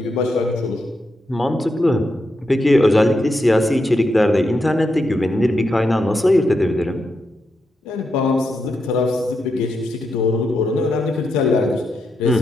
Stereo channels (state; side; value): normal; both; correlation 0.84